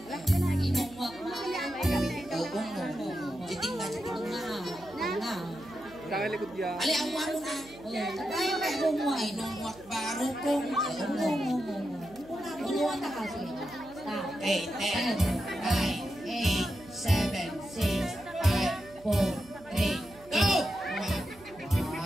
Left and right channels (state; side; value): noise; right; hum, 22 dB below the sound